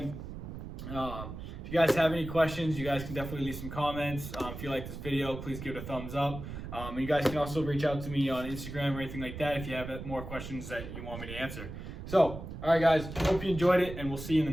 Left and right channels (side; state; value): right; noise; rumble, 9 dB below the sound